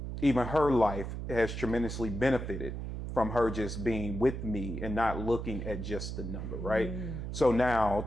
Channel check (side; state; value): right; noise; hum, 6 dB below the sound